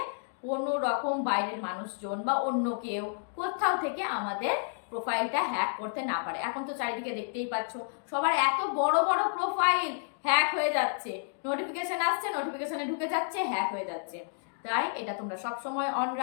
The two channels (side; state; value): right; silent; digital silence